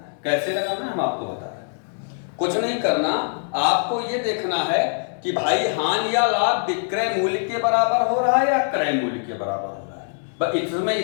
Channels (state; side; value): silent; right; 63 dB below the other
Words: कैसे लगाना है हम आपको बता रहे हैं। कुछ नहीं करना, आपको ये देखना है कि भाई हानि या लाभ विक्रय मूल्य के बराबर हो रहा है या क्रय मूल्य के बराबर हो रहा है। बस इसमें